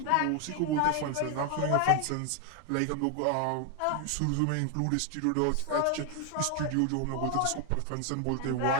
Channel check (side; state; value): both; different; correlation 0.01